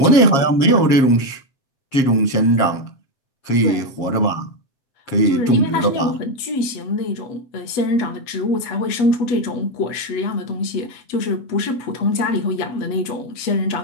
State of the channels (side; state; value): right; late; 7.4 ms